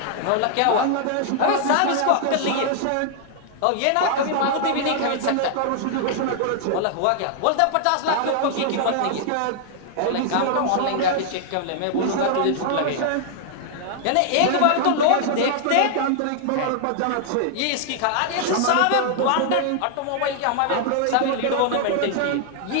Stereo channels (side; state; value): both; different; correlation -0.01